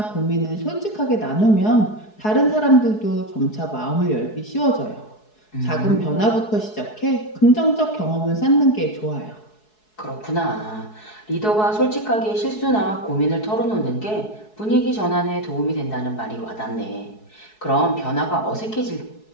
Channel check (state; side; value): late; right; 4.7 ms